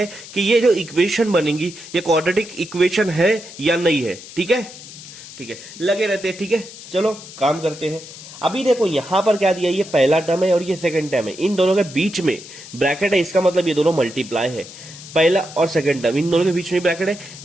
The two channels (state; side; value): noise; left; hiss, 16 dB below the sound